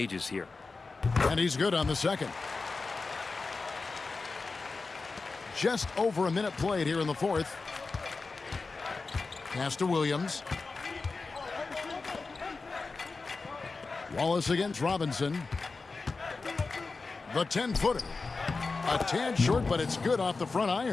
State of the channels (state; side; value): quieter; right; 4.0 dB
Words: here. And he's good on the second. Just over a minute played here in the fourth. Pass to Williams. Wallace against Robinson. The 10-footer. A tad short, but it's good off the front